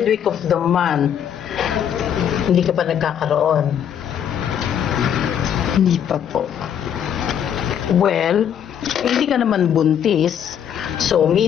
week of the month. Hindi ka pa nagkakaroon? Hindi pa po. Well, hindi ka naman buntis. So,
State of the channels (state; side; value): quieter; right; 9.0 dB